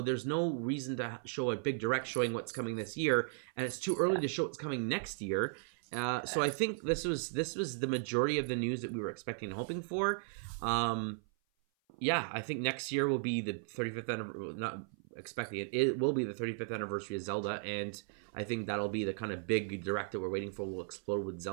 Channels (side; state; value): left; silent; 54 dB below the other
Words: there's no reason to show a big direct showing what's coming this year, and it's too early to show what's coming next year. So I think this was the majority of the news that we were expecting and hoping for. I think next year will be the 35th anniversary. Not expecting it. It will be the 35th anniversary of Zelda, and I think that'll be the kind of big direct that we're waiting for. We'll explode with